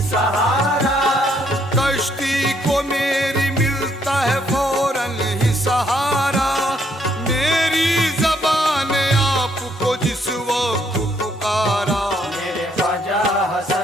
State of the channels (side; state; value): both; normal; correlation 0.70